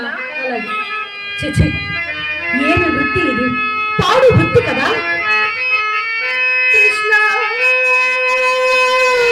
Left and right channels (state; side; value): identical; both; correlation 1.00